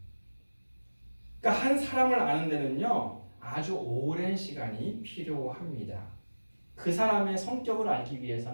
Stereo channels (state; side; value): inverted; both; correlation -1.00